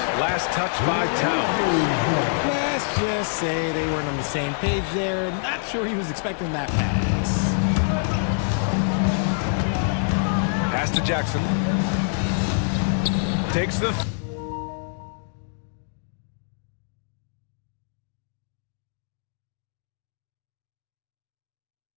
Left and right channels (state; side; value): silent; right; digital silence